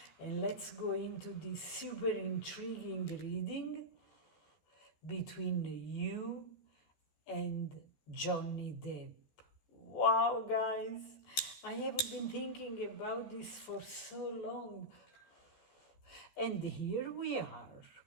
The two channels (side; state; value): right; late; 14 ms